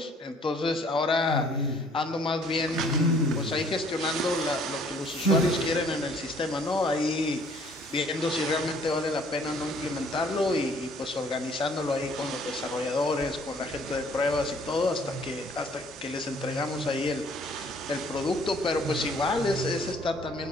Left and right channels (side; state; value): both; normal; correlation 0.59